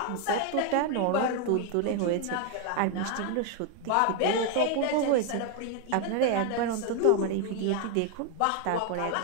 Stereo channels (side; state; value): both; different; correlation 0.01